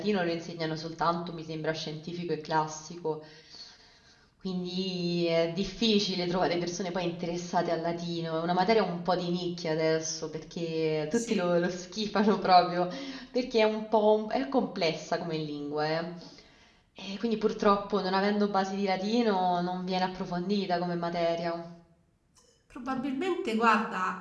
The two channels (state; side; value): identical; both; correlation 1.00